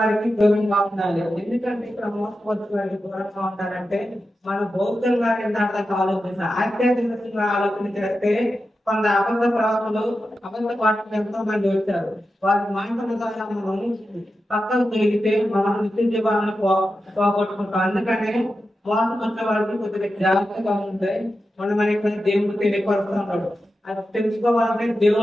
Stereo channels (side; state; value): both; normal; correlation 0.91